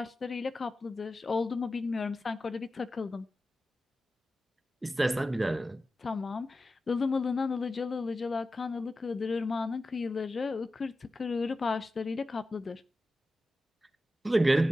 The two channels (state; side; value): normal; both; correlation 0.93